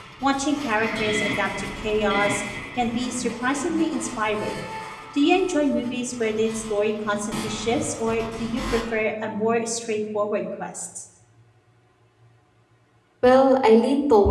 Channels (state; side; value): identical; both; correlation 1.00